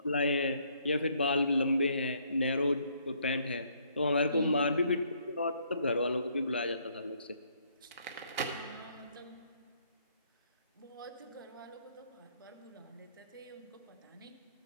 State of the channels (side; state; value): both; inverted; correlation -0.68